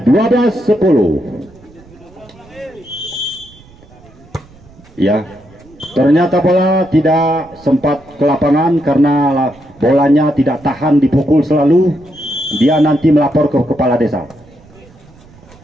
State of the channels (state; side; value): noise; right; rumble, 25 dB below the sound